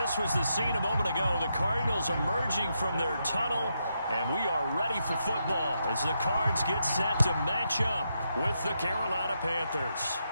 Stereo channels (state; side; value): inverted; both; correlation -0.82